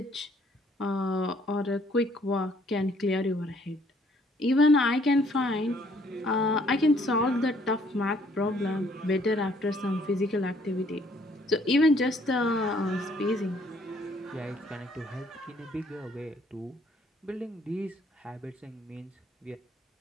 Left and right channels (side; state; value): both; normal; correlation 0.63